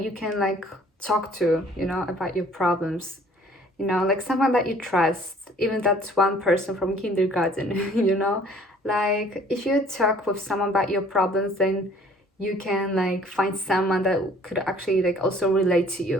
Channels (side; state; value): both; normal; correlation 0.55